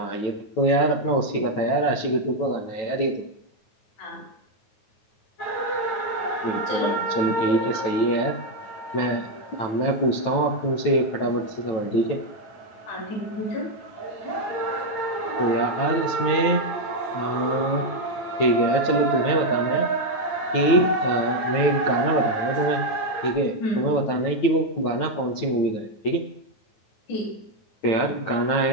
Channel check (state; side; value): late; right; 9.1 ms